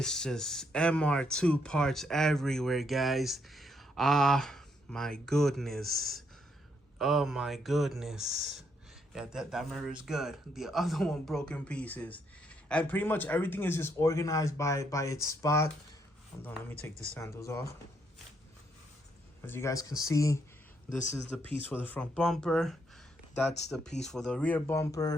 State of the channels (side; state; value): both; normal; correlation 0.74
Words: just MR2 parts everywhere, guys. My goodness. Oh my goodness. Yeah, that mirror is good. The other one broken pieces. And pretty much everything is just organized by its spot. Hold on, let me take the sandals off. As you guys can see, this is the piece for the front bumper. That's the piece for the rear